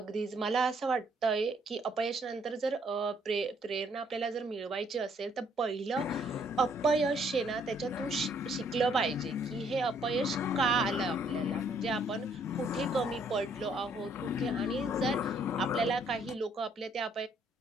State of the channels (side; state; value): both; normal; correlation 0.66